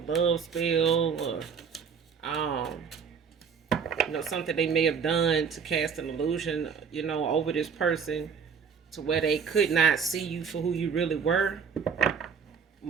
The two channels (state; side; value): quieter; left; 6.4 dB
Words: love spell, or something they may have done to cast an illusion, over this person to where they could not see you for who you really were.